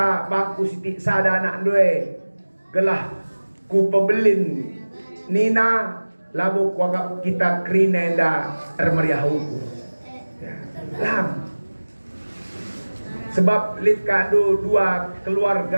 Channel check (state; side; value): inverted; both; correlation -1.00